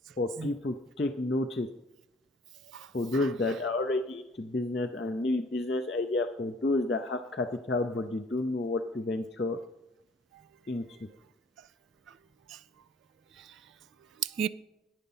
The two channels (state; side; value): normal; both; correlation 0.55